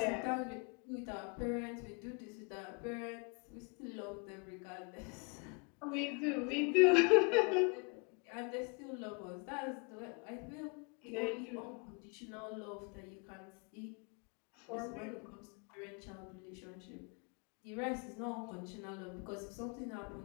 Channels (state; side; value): quieter; right; 33.7 dB